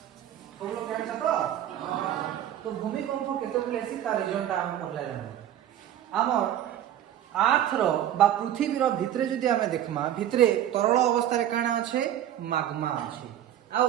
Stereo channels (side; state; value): left; quieter; 11.3 dB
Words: सब लोग জানিছ তো? তো ভূমিকম্প কেতগুলি আছে তার রিজনটা আমি পড়লে জানো। আমার আর্থর বা পৃথিবীর ভিতরে যদি আমি দেখমা, ভিতরে তরল অবস্থায় কানা আছে ম্যাগমা আছে। আও